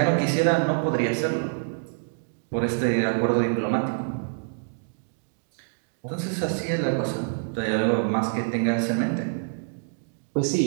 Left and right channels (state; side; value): silent; left; digital silence